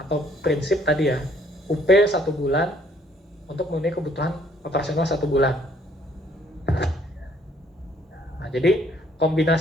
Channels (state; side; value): normal; both; correlation 0.63